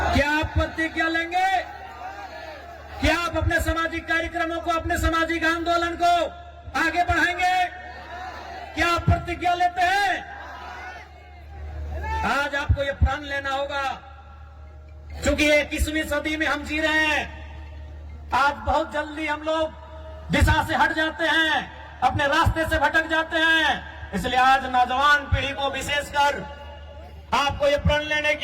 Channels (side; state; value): both; identical; correlation 1.00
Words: क्या आप प्रतिज्ञा लेंगे कि आप अपने सामाजिक कार्यक्रमों को, अपने सामाजिक आंदोलन को आगे बढ़ाएंगे? क्या आप प्रतिज्ञा लेते हैं? आज आपको ये प्रण लेना होगा, क्योंकि 21वीं सदी में हम जी रहे हैं। आज बहुत जल्दी हम लोग दिशा से हट जाते हैं, अपने रास्ते से भटक जाते हैं। इसलिए आज नौजवान पीढ़ी को विशेषकर आपको ये प्रण लेने